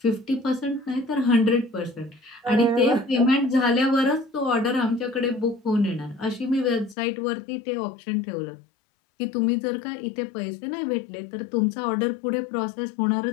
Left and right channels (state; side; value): drops out; right; at 7.0 s